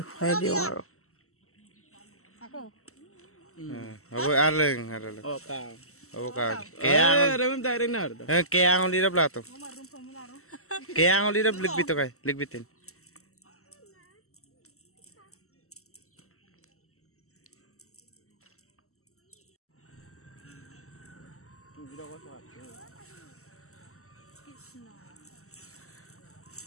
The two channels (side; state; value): right; late; 0.63 ms